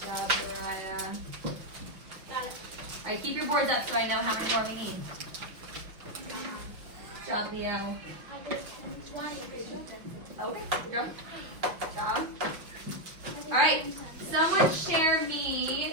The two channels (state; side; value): late; left; 6.0 ms